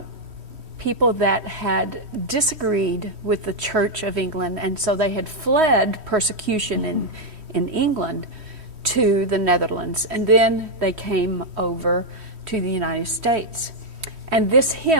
people that had disagreed with the Church of England, and so they had fled persecution in England to the Netherlands, and then they came over to the United States. And this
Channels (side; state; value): left; late; 3.1 ms